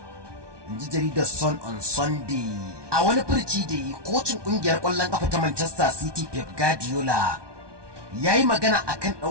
inji jaridar Sun on Sunday. A wani furci da yi, kocin kungiyar kwallon kafa ta Manchester City Pep Guardiola ya yi magana akan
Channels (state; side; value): late; left; 1.2 ms